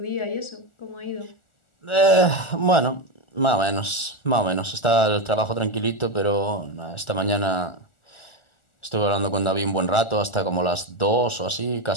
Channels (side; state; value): right; late; 1.4 ms